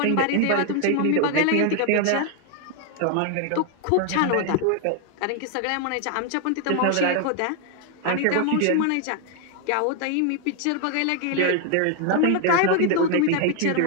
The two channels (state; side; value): different; both; correlation 0.00